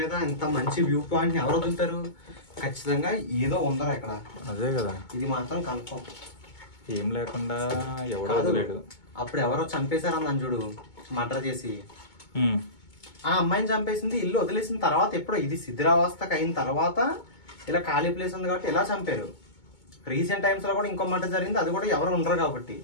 ఇంత మంచి వ్యూ పాయింట్ ఎవరు వదులుతారు? ఖచ్చితంగా ఏదో ఉందరా ఇక్కడ. అదే కదా, ఇది మాత్రం కన్ఫర్మ్. ఏం లేకుండా ఎవడో వదిలేడు. అప్పుడు ఎవరో చంపేశారని చూడు, మర్డర్ చేసి ఆ అమ్మాయిని చంపేసింది, ఇల్లు వదిలేసిన తర్వాత ఎప్పుడో ఇది శిథిరావస్థకు అయిన తర్వాత ఇలా ఖాళీ ప్లేస్ ఉంది కాబట్టి ఇలా చంపారు. రీసెంట్ టైమ్స్ లో కూడా ఇంకో మర్డర్ జరిగింది, అది కూడా ఎవరు ఉండరు కాబట్టి.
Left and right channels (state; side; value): late; right; 2.2 ms